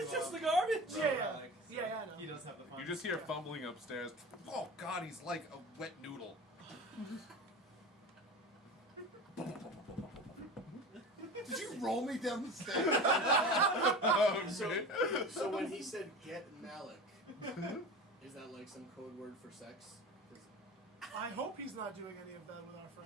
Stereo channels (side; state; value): both; normal; correlation 0.32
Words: It's just the Relic, garbage. Yeah, so yeah, I know. He does have the fun. You just hear fumbling upstairs. Oh God, he's like a wet noodle. Did you roll me down the stairs? Oh, So, man. so when he said get Malok, is that like some code word for sex? 'Cause- I hope he's not doing any of that with our